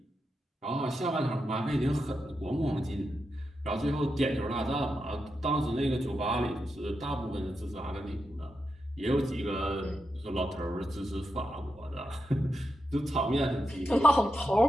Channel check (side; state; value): both; normal; correlation 0.86